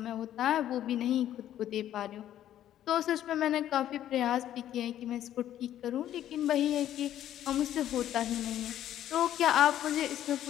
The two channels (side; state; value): right; quieter; 11.7 dB